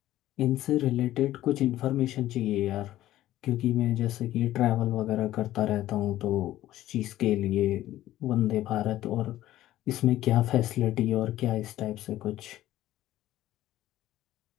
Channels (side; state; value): right; quieter; 14.3 dB